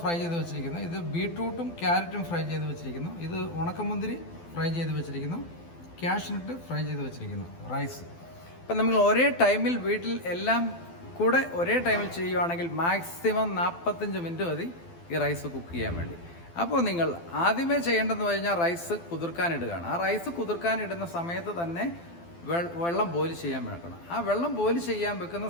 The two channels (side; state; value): right; late; 12 ms